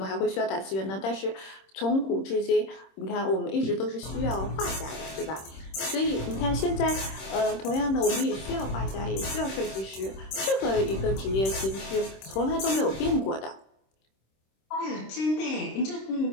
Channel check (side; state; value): right; late; 26 ms